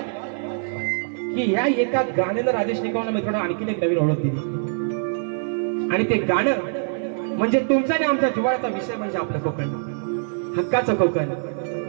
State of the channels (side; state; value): left; silent; digital silence